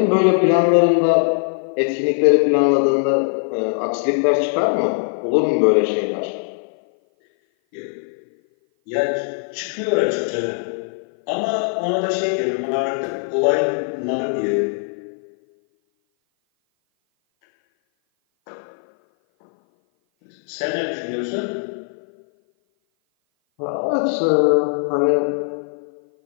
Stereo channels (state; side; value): silent; right; 57 dB below the other